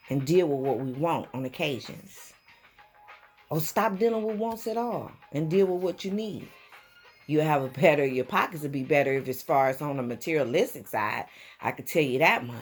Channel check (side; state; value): both; identical; correlation 1.00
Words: and deal with what we want on occasions. Or stop dealing with wants at all and deal with what you need. You'll have your pockets will be better if as far as on the materialistic side, I could tell you that